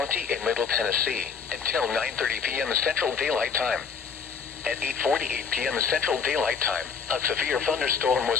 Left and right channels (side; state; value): right; quieter; 6.0 dB